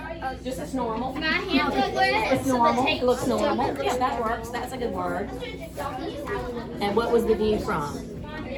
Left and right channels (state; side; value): identical; both; correlation 1.00